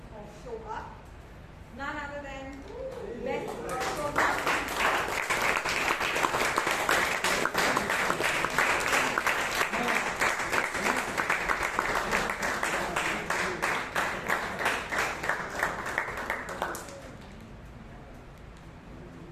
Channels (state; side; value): identical; both; correlation 1.00